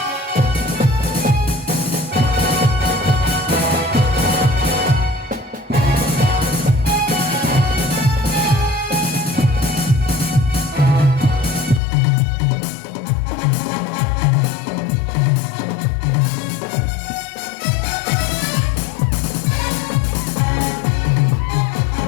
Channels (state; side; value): drops out; right; at 11.8 s